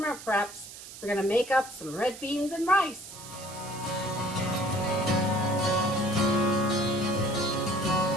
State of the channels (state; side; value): noise; right; hiss, 14 dB below the sound